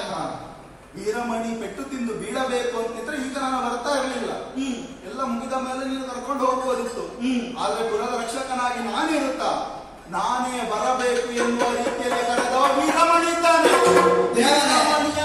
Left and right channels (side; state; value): both; identical; correlation 1.00